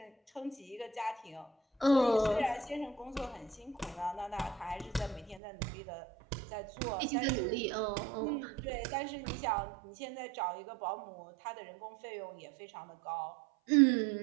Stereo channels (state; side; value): drops out; left; at 5.4 s